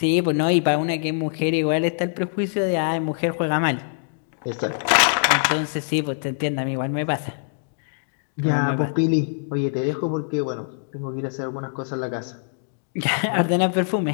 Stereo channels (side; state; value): right; silent; digital silence